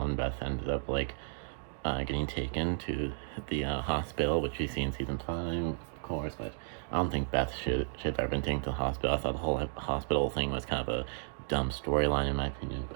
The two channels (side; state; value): left; silent; digital silence